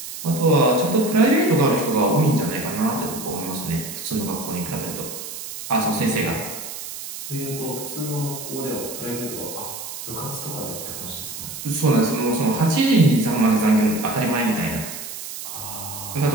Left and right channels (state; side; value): noise; right; hiss, 9 dB below the sound